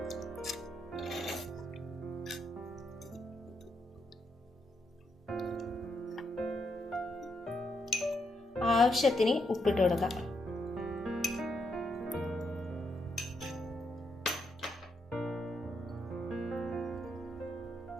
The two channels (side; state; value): both; normal; correlation 0.79